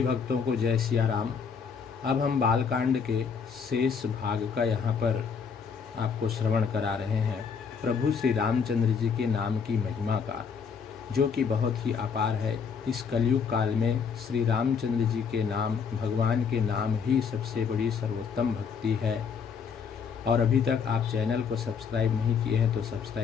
भक्तों को जय सिया राम। अब हम बालकांड के शेष भाग का यहाँ पर आपको श्रवण करा रहे हैं। प्रभु श्री रामचंद्र जी के नाम की महिमा का, जो कि बहुत ही अपार है। इस कलयुग काल में श्री रामचंद्र जी के नाम, भगवान के नाम ही सबसे बड़ी सर्वोत्तम भक्ति है। और अभी तक आप चैनल को सब्सक्राइब नहीं किए हैं तो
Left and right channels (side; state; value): right; quieter; 6.2 dB